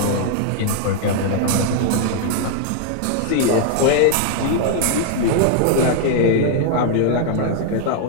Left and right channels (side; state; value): both; different; correlation 0.00